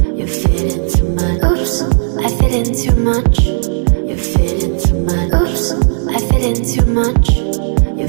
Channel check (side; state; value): left; silent; digital silence